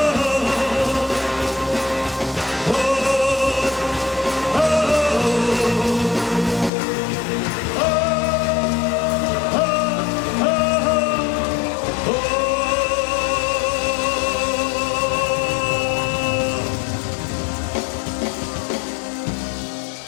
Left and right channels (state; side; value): drops out; right; at 6.7 s